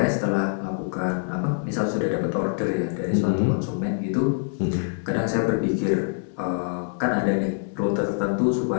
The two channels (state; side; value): silent; right; 61 dB below the other